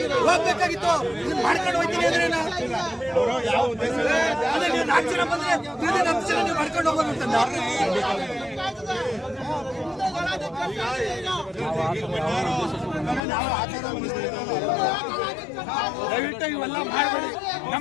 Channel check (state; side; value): drops out; right; at 13.2 s